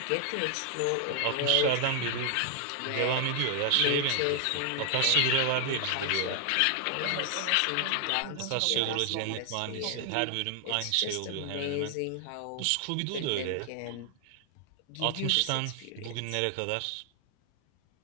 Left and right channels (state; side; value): different; both; correlation 0.00